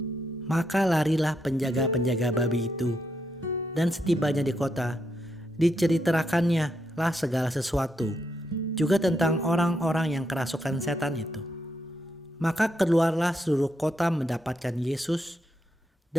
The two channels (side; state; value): both; normal; correlation 0.80